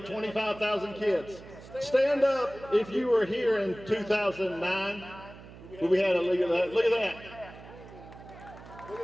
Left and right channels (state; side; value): noise; right; hum, 17 dB below the sound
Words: 25,000 kids. Stand up if you were here in 2009. We had a look at that. Look at that.